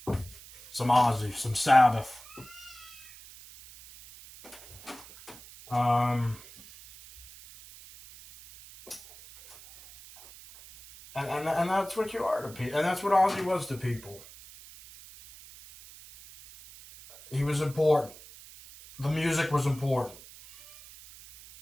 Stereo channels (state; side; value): noise; right; hiss, 19 dB below the sound